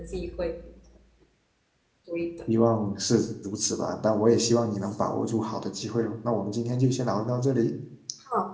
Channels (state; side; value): identical; both; correlation 1.00